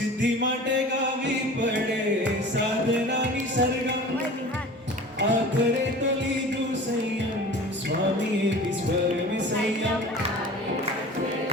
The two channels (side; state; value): both; normal; correlation 0.40